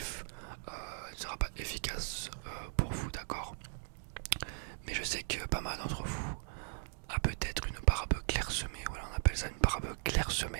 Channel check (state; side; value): silent; left; digital silence